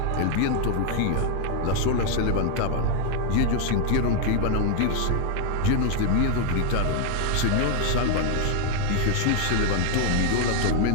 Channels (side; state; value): both; different; correlation 0.00